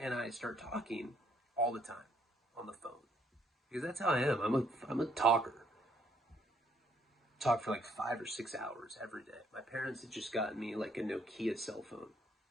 I start talking all the time on the phone. Because that's how I am. I'm a talker. Talk for like 5 or 6 hours every day. My parents had just gotten me like a Nokia cell phone.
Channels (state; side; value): normal; both; correlation 0.68